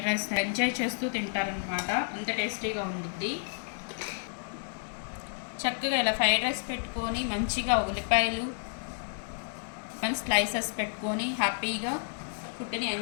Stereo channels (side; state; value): right; silent; digital silence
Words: రైస్ ఎంజాయ్ చేస్తూ తింటారనమాట. అంత టేస్టీగా ఉంటుంది. చక్కగా ఇలా ఫ్రైడ్ రైస్ పెట్టుకొని మంచిగా ఉల్లిపాయలు మంచి స్లైసెస్ పెట్టుకొని హ్యాపీగా ఫుడ్ని